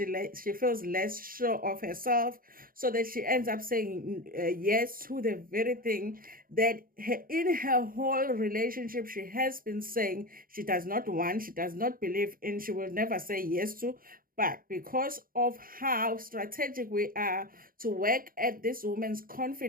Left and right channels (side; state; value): left; late; 0.41 ms